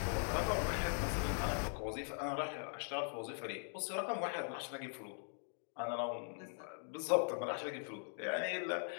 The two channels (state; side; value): silent; right; 50 dB below the other